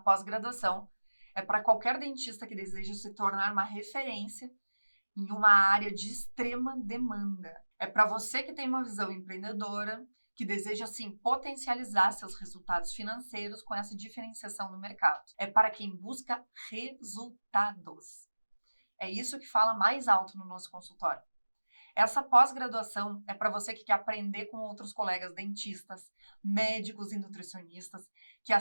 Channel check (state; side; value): inverted; both; correlation -1.00